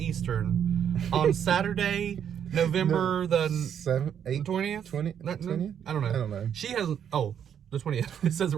on Saturday, November the 20th? 20th? I don't know. She has... Oh, the 20th. It says it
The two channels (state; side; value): quieter; left; 8.7 dB